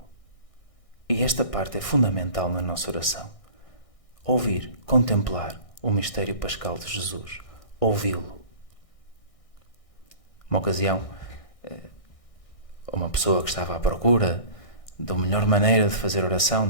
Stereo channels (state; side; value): late; right; 1.6 ms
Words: E esta parte é fundamental na nossa oração. Ouvir, contemplar o mistério pascal de Jesus, ouvi-lo. Uma ocasião, uma pessoa que estava à procura da melhor maneira de fazer oração,